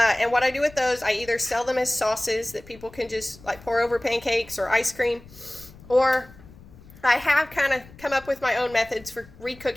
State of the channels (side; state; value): left; noise; rumble, 21 dB below the sound